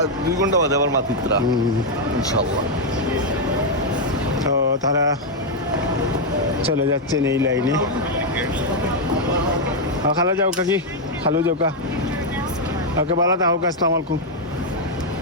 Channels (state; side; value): normal; both; correlation 0.00